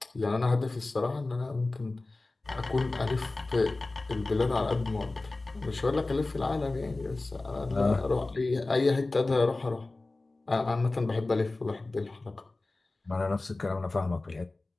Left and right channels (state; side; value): quieter; right; 3.2 dB